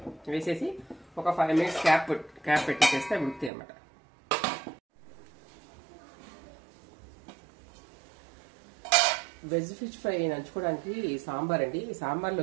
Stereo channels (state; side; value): drops out; left; at 3.5 s